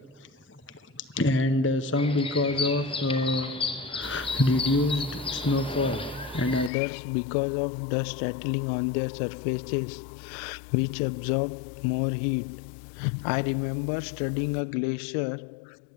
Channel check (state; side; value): drops out; right; at 6.7 s